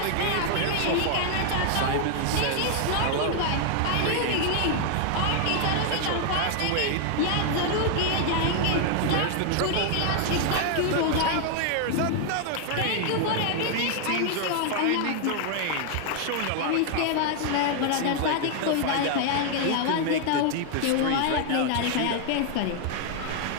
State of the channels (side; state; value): both; different; correlation 0.00